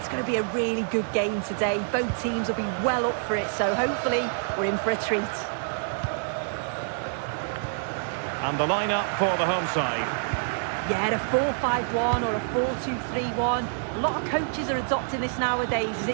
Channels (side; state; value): left; silent; 60 dB below the other